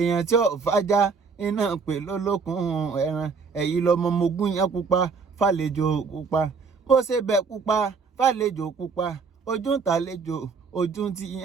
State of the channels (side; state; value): left; quieter; 5.1 dB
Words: tí ọ̀fájá iná pè lólókun ẹran ẹ̀yìn lọmọ mogún yẹn pupa fàlejò pupa bó ṣe bẹ̀ pupa fàlejò pupa ojú ń tàlejò ojú ti